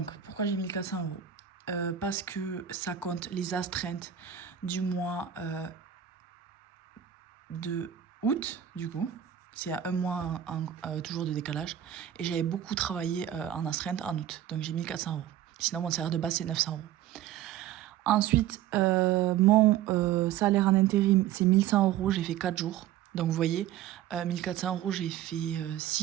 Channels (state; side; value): quieter; left; 11.0 dB